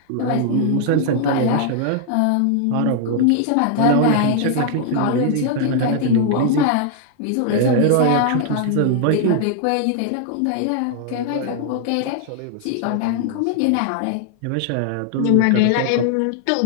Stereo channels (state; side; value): different; both; correlation 0.00